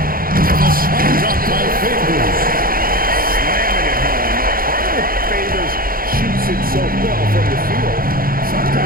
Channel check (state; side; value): late; left; 0.42 ms